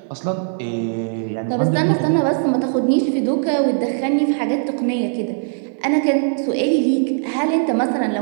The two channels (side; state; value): left; silent; digital silence